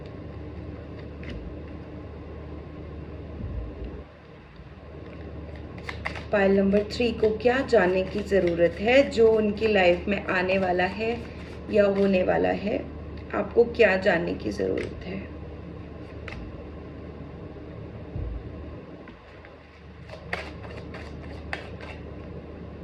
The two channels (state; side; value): identical; both; correlation 1.00